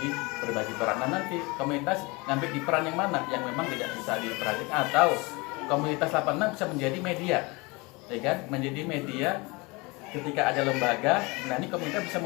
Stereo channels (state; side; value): quieter; right; 25.9 dB